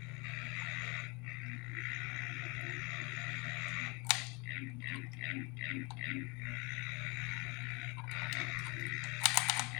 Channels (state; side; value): quieter; right; 28.3 dB